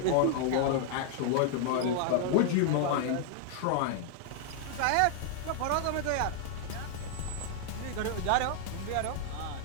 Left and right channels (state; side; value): different; both; correlation -0.01